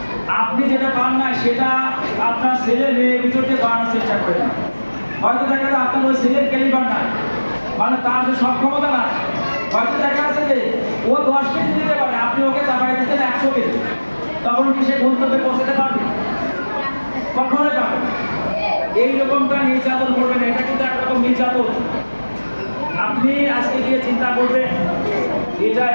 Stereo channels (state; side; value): inverted; both; correlation -1.00